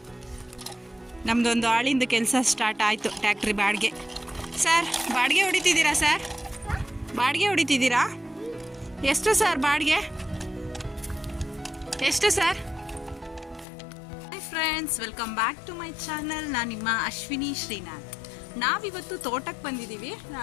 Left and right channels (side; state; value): right; drops out; at 13.7 s